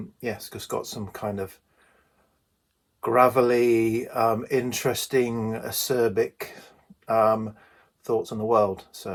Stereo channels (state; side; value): identical; both; correlation 1.00